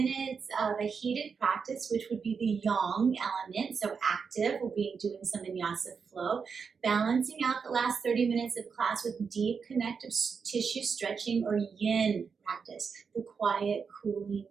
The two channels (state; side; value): quieter; left; 5.8 dB